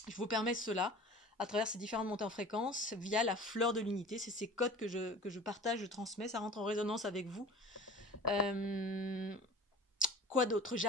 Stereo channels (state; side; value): normal; both; correlation 0.41